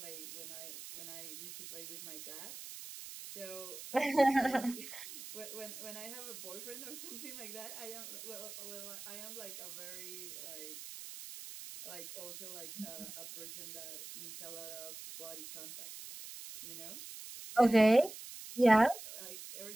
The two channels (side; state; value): right; noise; hiss, 11 dB below the sound